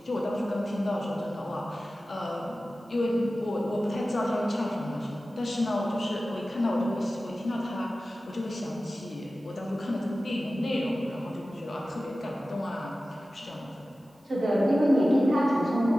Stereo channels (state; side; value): normal; both; correlation 0.95